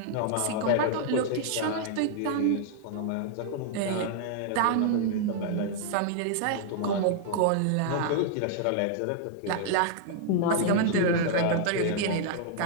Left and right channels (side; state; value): both; different; correlation -0.01